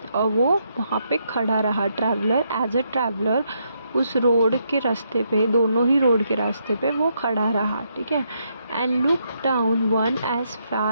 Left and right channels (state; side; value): inverted; both; correlation -0.77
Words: और वो वहाँ पे खड़ा रहा. ट्रैवलर, एज अ ट्रैवलर उस रोड के रास्ते पे, दोनों ही रोड के रास्ते पे वो खड़ा रहा. ठीक है. And look down one as